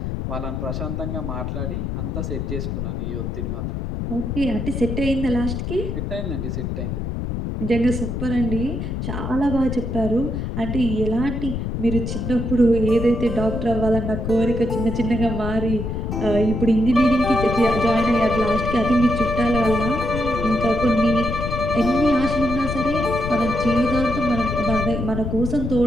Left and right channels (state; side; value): noise; left; rumble, 3 dB below the sound